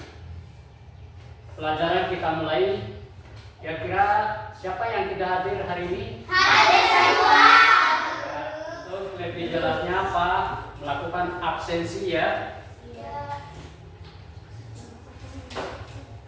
pelajaran kita mulai, kira-kira siapa yang tidak hadir hari ini? Hadir semua. Ya, untuk lebih jelasnya apa? Melakukan absensi ya.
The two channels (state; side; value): identical; both; correlation 1.00